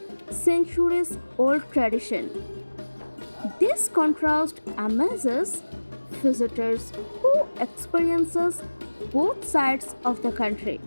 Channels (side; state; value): both; inverted; correlation -1.00